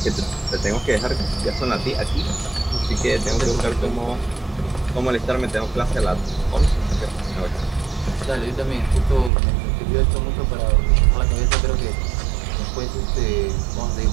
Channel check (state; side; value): drops out; left; at 9.3 s